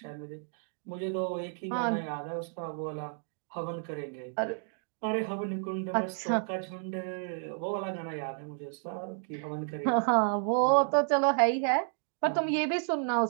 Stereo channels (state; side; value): silent; left; 57 dB below the other